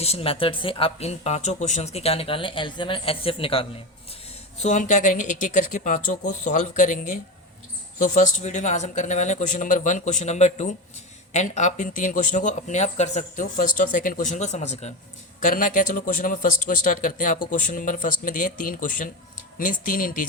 method से आप इन पांचों क्वेश्चंस के क्या निकालने, एलसीएम एंड एचसीएफ निकालने हैं। सो हम क्या करेंगे, एक एक करके पाँचों को सॉल्व करेंगे। तो फर्स्ट वीडियो में आज हम करने वाले हैं question number 1, question number 2 and आप इन 3 क्वेश्चनों को अपने आप कर सकते हो फर्स्ट और सेकंड क्वेश्चन को समझकर। करना क्या, चलो क्वेश्चन नंबर फर्स्ट को स्टार्ट करते हैं। आपको क्वेश्चन नंबर फर्स्ट में दिए 3 क्वेश्चन, मीन्स 3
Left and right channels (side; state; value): both; normal; correlation 0.20